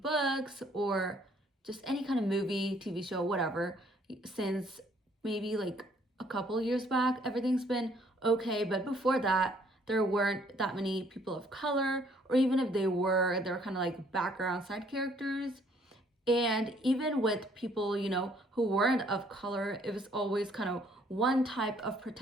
books or just any kind of movie, TV show, whatever, since maybe like a couple years back, everything's been okay, but before that, there weren't that many people of color, or even if they were kind of like background side characters. And even with people, who weren't of color, it was always kind of one type of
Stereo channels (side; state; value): both; normal; correlation 0.63